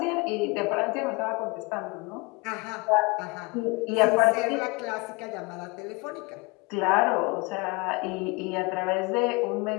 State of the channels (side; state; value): right; quieter; 27.0 dB